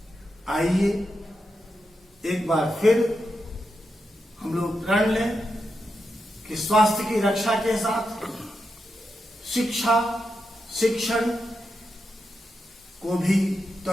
आइए एक बार फिर हम लोग प्रण लें कि स्वास्थ्य की रक्षा के साथ शिक्षा, शिक्षण को भी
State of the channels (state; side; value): normal; both; correlation 0.86